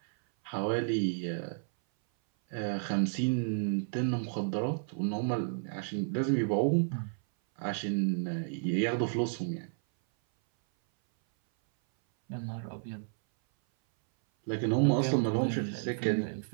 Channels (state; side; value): silent; left; 57 dB below the other